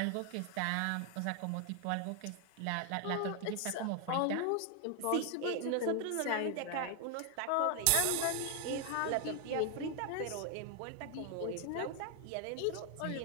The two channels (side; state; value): both; different; correlation 0.00